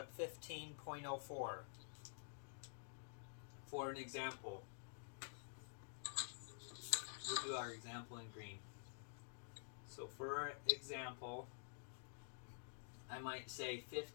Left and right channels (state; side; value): silent; right; digital silence